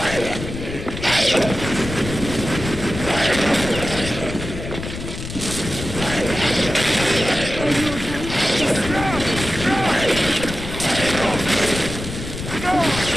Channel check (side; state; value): left; noise; rumble, 8 dB below the sound